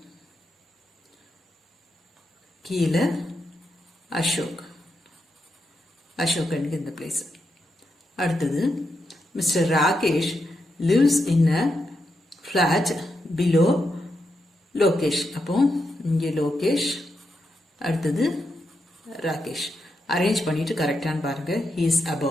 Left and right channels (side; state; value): both; normal; correlation 0.84